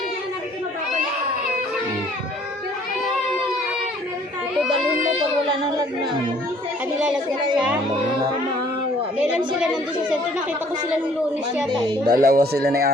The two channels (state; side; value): normal; both; correlation 0.58